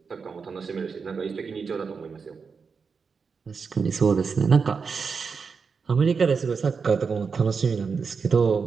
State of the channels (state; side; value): quieter; left; 5.4 dB